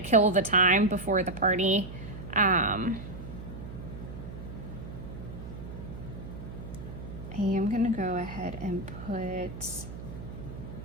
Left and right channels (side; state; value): right; noise; hum, 10 dB below the sound